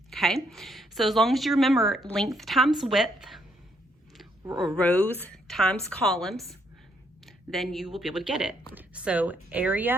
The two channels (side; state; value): both; normal; correlation 0.73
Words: okay? So as long as you remember length times width, or rows times columns, then you will be able to get it. So